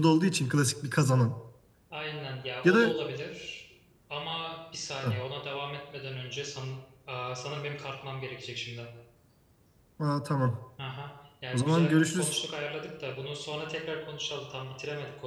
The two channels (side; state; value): both; identical; correlation 1.00